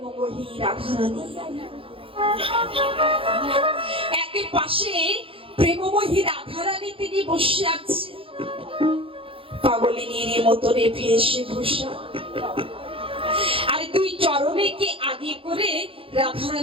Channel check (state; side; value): late; left; 0.26 ms